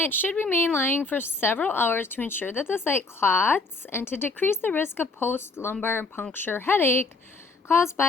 should remain lying for several hours to ensure that the site clots and to decrease the risk of post-lumbar puncture headache caused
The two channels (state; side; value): quieter; right; 3.6 dB